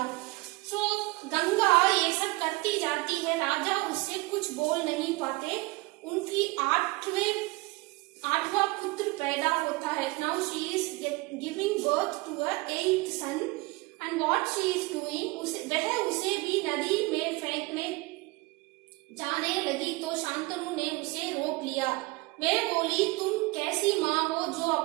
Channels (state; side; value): quieter; left; 23.6 dB